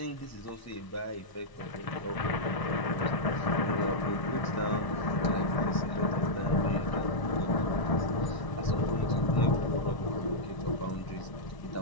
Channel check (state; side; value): late; right; 1.0 ms